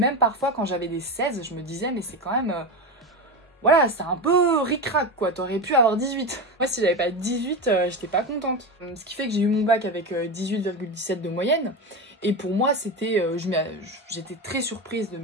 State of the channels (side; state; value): both; normal; correlation 0.19